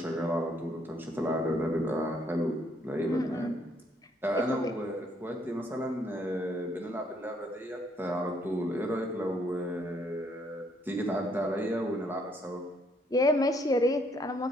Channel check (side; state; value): both; normal; correlation 0.69